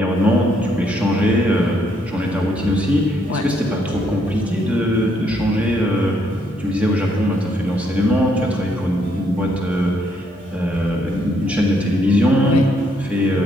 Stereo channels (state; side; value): normal; both; correlation 0.72